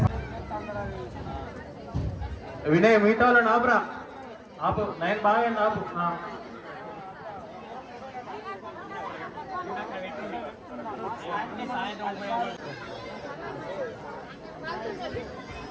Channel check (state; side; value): identical; both; correlation 1.00